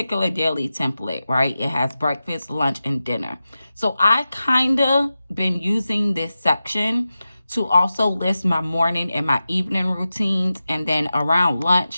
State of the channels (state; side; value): inverted; both; correlation -0.93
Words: daily template, right, it has breakfast, lunch, and dinner. So I kind of been using this section to also list my morning and my evening routines. And then around